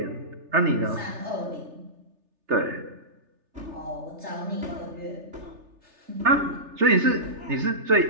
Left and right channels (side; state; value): left; late; 3.3 ms